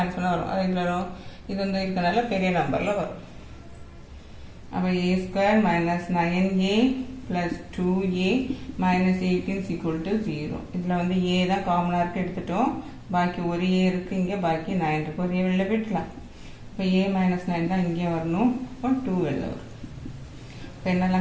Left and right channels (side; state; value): both; identical; correlation 1.00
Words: வரும். அது இதில் வரும். இது வந்து இருக்கனால பெரிய நம்பரில் வரும். அப்போ a² - 9a plus 2a minus 18 is equal to 0. இதில் வந்து a தான் காமனாக இருக்கு எடுத்துட்டோம். பாக்கி ஒரு a இருக்கு, இங்கே பாக்கி 9 இருக்கு. ஒரு a வெளில போயிடலாம். இப்போ a - 9 தான் இங்கே வரணும். இப்போ 2 வெளில வரும். இப்போ